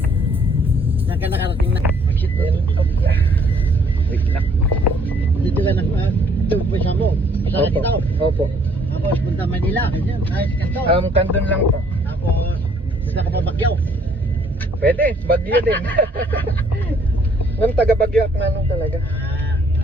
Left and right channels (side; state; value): both; normal; correlation 0.62